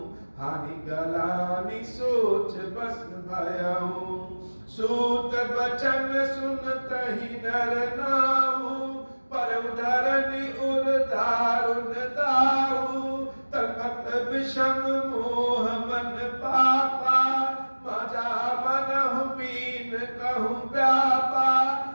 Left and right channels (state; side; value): inverted; both; correlation -1.00